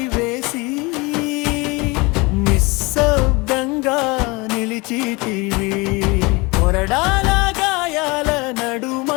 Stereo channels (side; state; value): right; quieter; 25.8 dB